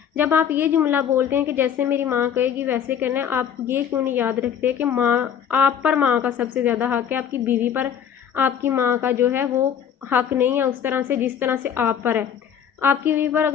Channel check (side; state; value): right; quieter; 8.5 dB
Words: जब आप ये जुमला बोलते हैं कि जैसे मेरी माँ कहेगी वैसे करना है, आप ये क्यों नहीं याद रखते कि माँ, आप पर माँ का सबसे ज़्यादा हक़ है, आपकी बीवी पर आपकी माँ का जो है वो हक़ नहीं है उस तरह से जिस तरह से आप पर है। आपकी बीवी पर